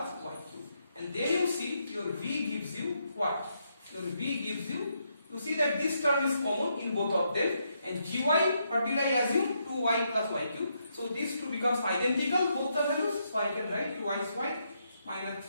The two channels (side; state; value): both; inverted; correlation -0.79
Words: y cube. And then you see your v gives you what? Your v gives you see that this term is common in both of them, and gy, what will I assume? 2y plus y cube. So these two becomes identical, both the values, so I can write 2y minus